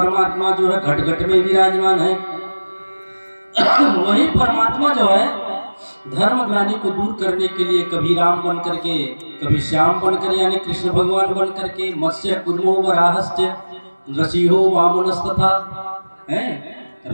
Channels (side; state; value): both; inverted; correlation -1.00